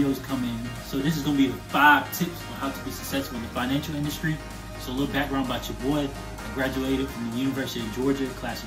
coming. So this is going to be the 5 tips on how to be successful in the financial industry. So a little background about your boy. I graduated from the University of Georgia, class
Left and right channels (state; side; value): identical; both; correlation 1.00